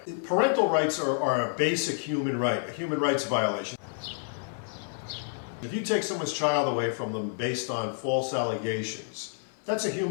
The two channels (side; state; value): right; silent; 56 dB below the other